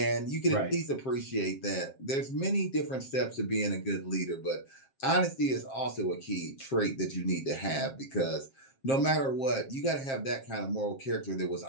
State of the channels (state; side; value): late; right; 7.5 ms